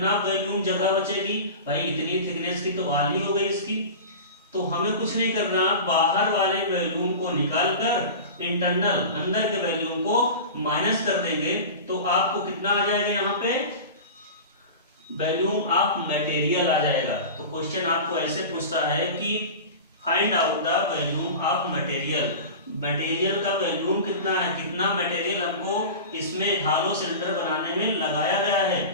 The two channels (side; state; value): both; inverted; correlation -0.32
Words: वॉल्यूम जगह बचेगी, भाई इतनी थिकनेस की तो वॉल ही हो गई इसकी। तो हमें कुछ नहीं करना, बाहर वाले वॉल्यूम को निकाल कर इंटरनल अंदर के वॉल्यूम को माइनस कर देंगे, तो आपको कितना आ जाएगा, यहाँ पे वॉल्यूम ऑफ मटेरियल आ जाएगा। तो क्वेश्चन आपको ऐसे पूछता है कि find out the volume of material. Material का वॉल्यूम कितना है, कितना मटेरियल हमको इसमें हॉलो सिलेंडर बनाने में लगाया गया है।